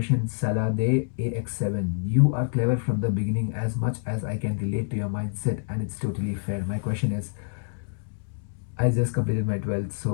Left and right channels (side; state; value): right; silent; 60 dB below the other